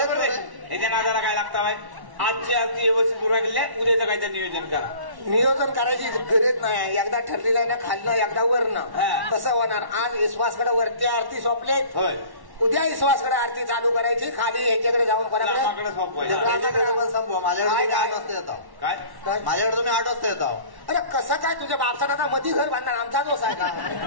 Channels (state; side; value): late; left; 1.1 ms